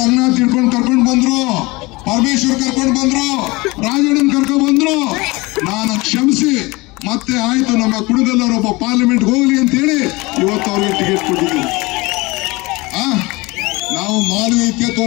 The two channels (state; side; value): quieter; right; 23.4 dB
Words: ತಿಳ್ಕೊಂಡು ಕರ್ಕೊಂಡು ಬಂದ್ರು, ಪರಮೇಶ್ವರ್ ಕರ್ಕೊಂಡು ಬಂದ್ರು, ರಾಜಣ್ಣನ್ ಕರ್ಕೊಂಡು ಬಂದ್ರು. ನಾನು ಕ್ಷಮಿಸಿ ಮತ್ತೆ ಆಯ್ತು ನಮ್ಮ ಕುಣಗಲ್ಲವರು ಒಬ್ಬ ಪಾರ್ಲಿಮೆಂಟ್ ಹೋಗ್ಲಿ ಅಂತ ಹೇಳಿ ಇವತ್ತು ಅವ್ರಿಗೆ ಟಿಕೆಟ್ ಕೊಟ್ಟಿದ್ದೀವಿ. ನಾವು ಮಾನವೀಯತೆ